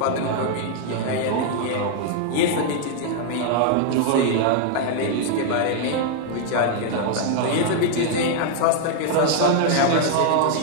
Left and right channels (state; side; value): different; both; correlation 0.00